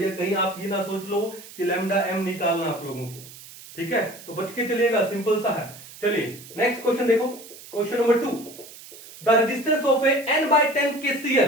कहीं आप ये ना सोच लो कि लैम्डा एम निकालना आप लोगों को। ठीक है, तो बच के चलिएगा, सिंपल सा है। चलिए नेक्स्ट क्वेश्चन देखो, question number 2, the resistance of A n/10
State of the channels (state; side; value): noise; right; hiss, 17 dB below the sound